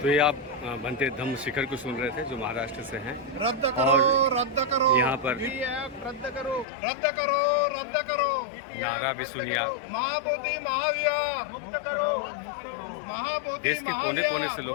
तो ये आप बनते धम्म शिखर को सुन रहे थे जो महाराष्ट्र से हैं। रद्द करो, रद्द करो, यहाँ पर रद्द करो, रद्द करो, रद्द करो, नारा भी सुनिए आप। महाबोधि महाविहार मुक्त करो, महाबोधि देश के कोने कोने से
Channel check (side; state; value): right; drops out; at 6.7 s